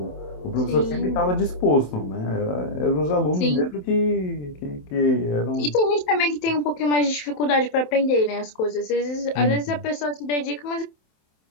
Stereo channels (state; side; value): late; right; 27 ms